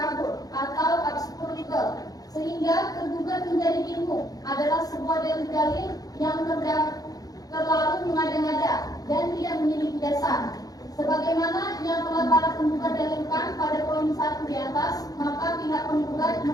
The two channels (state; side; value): late; right; 0.18 ms